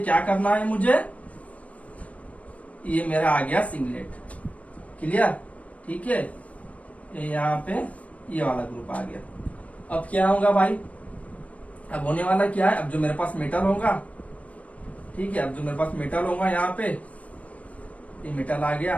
करना है मुझे, ये मेरा आ गया सिंगलेट, क्लियर, ठीक है। ये यहाँ पे ये वाला ग्रुप आ गया। अब क्या होगा भाई, अब होने वाला क्या है, अब जो मेरे पास मेटल होगा, ठीक है, अब जो मेरे पास मेटल होगा यहाँ पे, ये मेटल आ गया,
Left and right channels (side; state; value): right; late; 0.067 ms